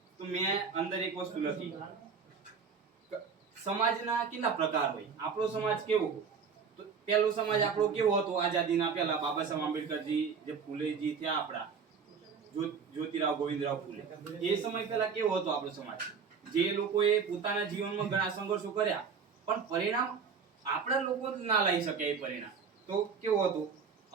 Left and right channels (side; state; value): left; quieter; 6.0 dB